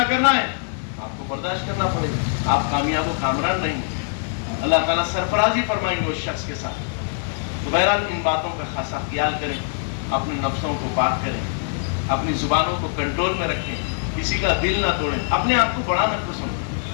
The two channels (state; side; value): silent; right; digital silence